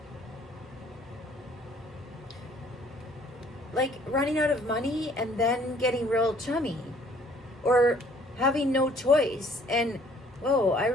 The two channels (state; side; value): normal; both; correlation 0.58